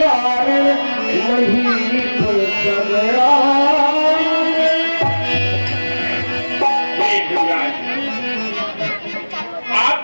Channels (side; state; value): both; inverted; correlation -1.00